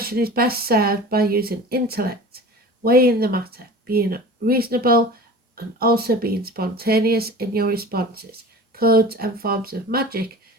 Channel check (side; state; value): both; normal; correlation 0.38